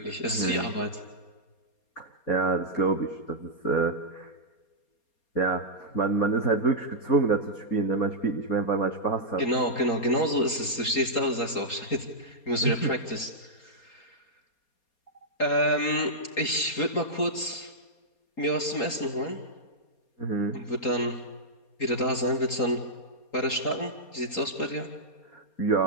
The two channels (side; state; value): right; late; 4.3 ms